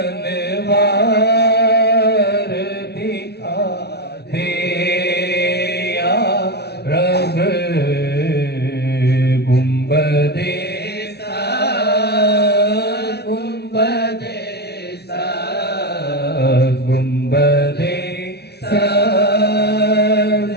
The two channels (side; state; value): right; late; 0.48 ms